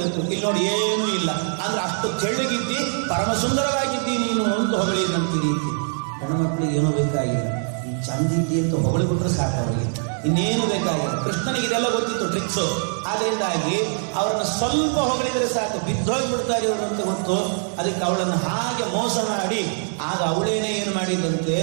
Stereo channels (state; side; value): silent; left; 63 dB below the other